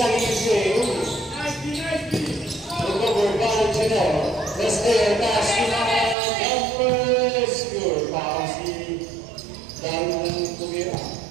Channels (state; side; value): drops out; left; at 6.2 s